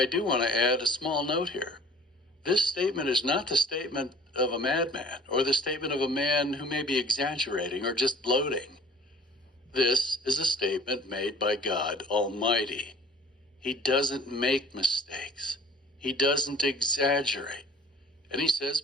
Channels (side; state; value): both; normal; correlation 0.49